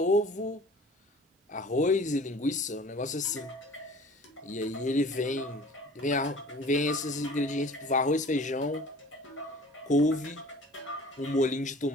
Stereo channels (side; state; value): both; normal; correlation 0.46